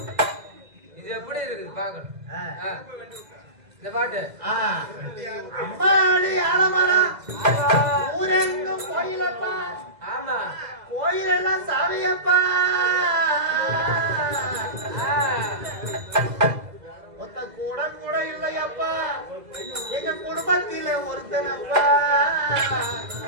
இது எப்படி இருக்குது பாக்கணும். இந்த பாட்டு அம்மாடி ஆலமரம் ஊரெங்கும் கோயிலப்பா, ஆமா. கோயிலெல்லாம் சாமியப்பா, ஒத்த கூட கூட இல்லையப்பா, எங்க குடும்பத்தில ஒருத்தனப்பா,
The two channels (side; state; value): left; late; 2.0 ms